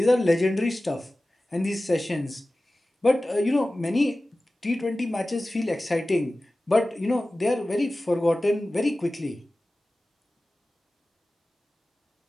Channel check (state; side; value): normal; both; correlation 0.96